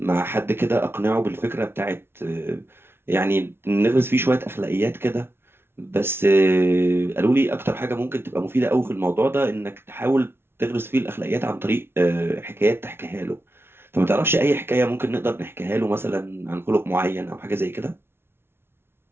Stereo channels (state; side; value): late; left; 0.12 ms